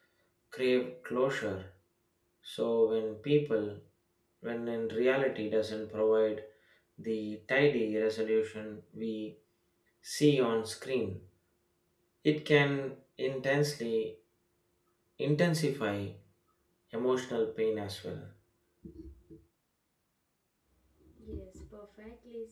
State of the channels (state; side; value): identical; both; correlation 1.00